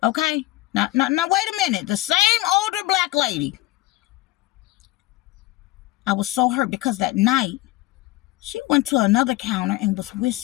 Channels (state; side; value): quieter; right; 18.1 dB